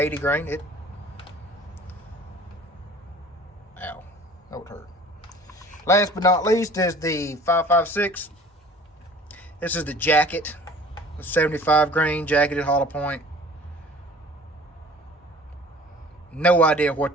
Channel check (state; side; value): normal; both; correlation 0.47